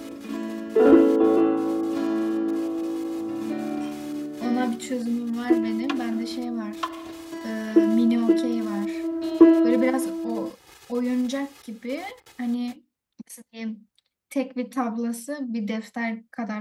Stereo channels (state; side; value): identical; both; correlation 1.00